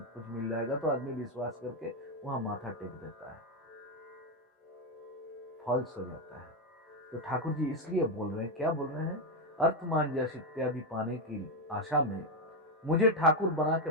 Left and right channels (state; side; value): normal; both; correlation 0.05